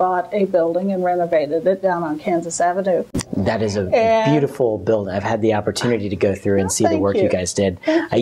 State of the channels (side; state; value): both; identical; correlation 1.00